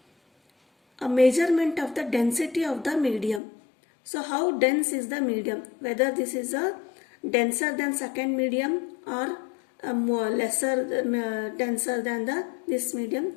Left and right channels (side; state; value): right; drops out; at 3.4 s